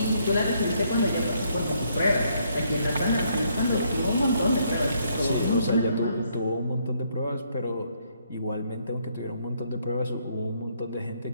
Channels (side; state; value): both; inverted; correlation -0.71